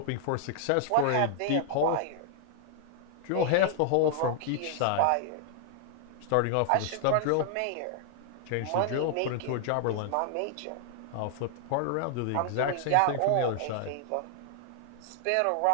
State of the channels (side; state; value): both; different; correlation 0.00